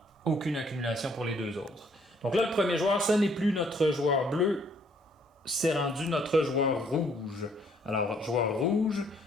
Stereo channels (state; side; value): normal; both; correlation 0.64